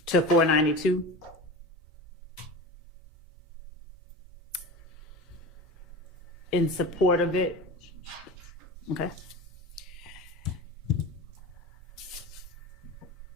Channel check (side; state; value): both; normal; correlation 0.30